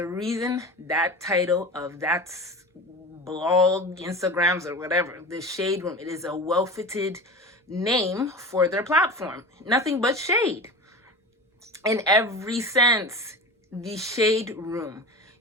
reason that title of that blog, Instagrams, or whatever, the Shade Room, it is a well-fitted name for their platform. Nothing but shade. In every sense, the Shade Room.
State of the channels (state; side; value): normal; both; correlation 0.30